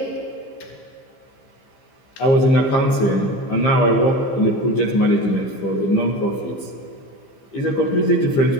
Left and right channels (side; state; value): right; late; 15 ms